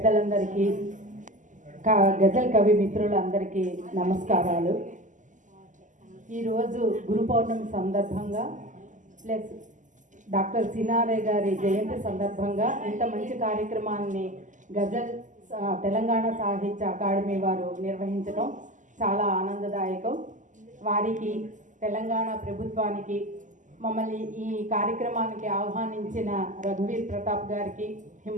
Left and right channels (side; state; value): left; late; 0.37 ms